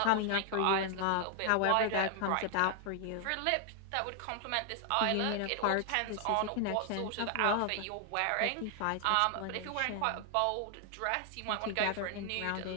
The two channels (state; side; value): different; both; correlation 0.00